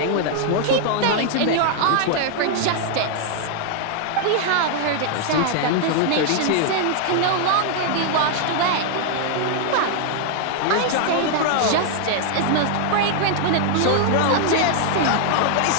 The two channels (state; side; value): different; both; correlation 0.00